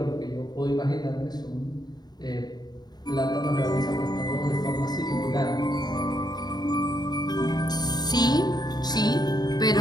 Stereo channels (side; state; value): right; late; 0.20 ms